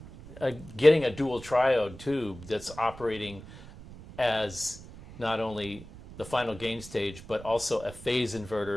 triode tube that's operating as not only the final gain stage, but also a phase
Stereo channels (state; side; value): noise; right; rumble, 16 dB below the sound